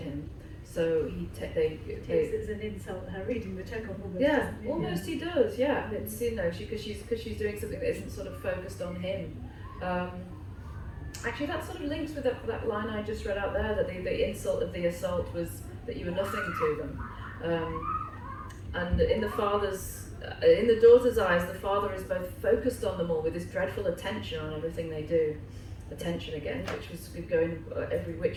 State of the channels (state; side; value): identical; both; correlation 1.00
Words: So he takes it as an insult, her reading the Chekhov almost. Yeah, almost he does. Yeah, it's because she's doing something that isn't sort of focused on him. Actually, that sort of links with that line I just read out there, that the insult of the assault was that you were nothing to them. And in the daughter's eyes, the father is both focused on them all with this dreadful attention on everything they do. Attention again, which was going every